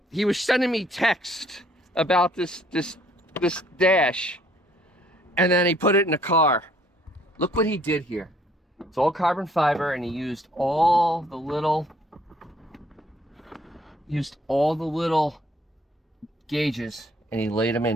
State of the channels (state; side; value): normal; both; correlation 0.62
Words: he was sending me text about this dash, and then he put it in the car. Look what he did here. It's all carbon fiber, and he used all the little gauges, and he laid them